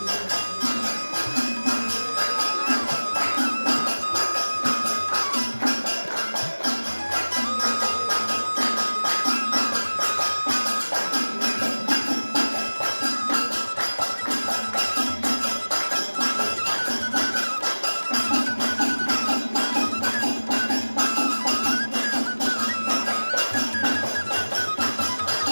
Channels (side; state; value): both; inverted; correlation -1.00